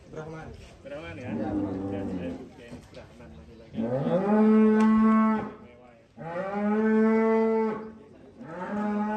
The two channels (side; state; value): both; identical; correlation 1.00